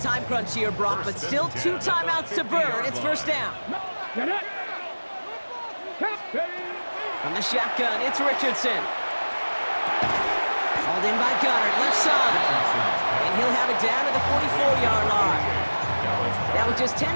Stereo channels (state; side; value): inverted; both; correlation -1.00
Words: crunch here, Brock, but still 2 timeouts to burn. It's 1st down. Get it. From the shotgun, it's Richardson. Hauled in by Goddard, left side. And he'll have it down to the 44-yard line. Now with just